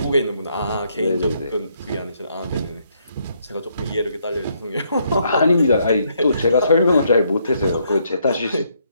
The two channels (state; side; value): inverted; both; correlation -0.73